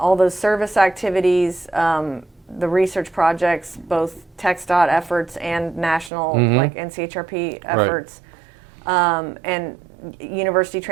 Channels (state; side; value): drops out; left; at 6.1 s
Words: those service activities, the research projects, both TxDOT efforts and national, like NCHRP efforts, and University